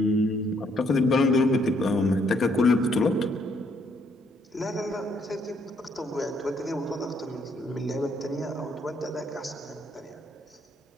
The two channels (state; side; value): normal; both; correlation 0.70